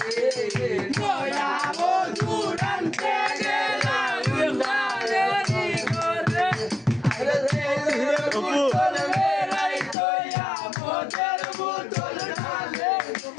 নয়া মধুরাতে গেলাম তাবেরি করে বোতল মেরাই তোয়া মোদের বোতল ঢালে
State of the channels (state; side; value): drops out; right; at 10.0 s